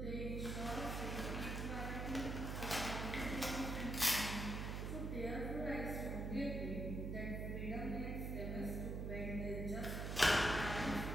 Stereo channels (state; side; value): noise; right; hum, 2 dB below the sound